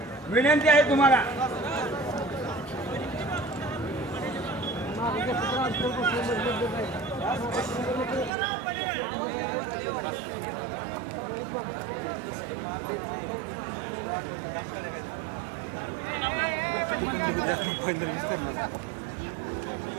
विनंती आहे तुम्हाला.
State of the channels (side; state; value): left; drops out; at 8.3 s